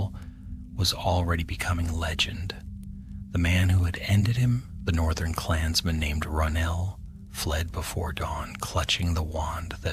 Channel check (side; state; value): both; identical; correlation 1.00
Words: was already becoming legend. The man who had ended him, the northern clansman named Ronel, fled before dawn, clutching the wand